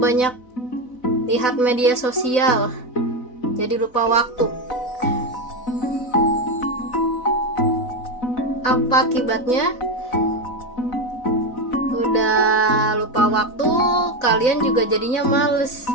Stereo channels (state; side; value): late; right; 4.0 ms